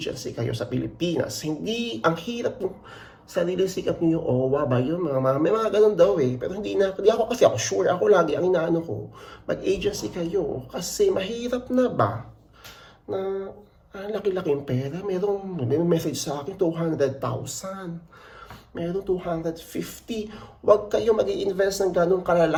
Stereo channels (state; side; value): identical; both; correlation 1.00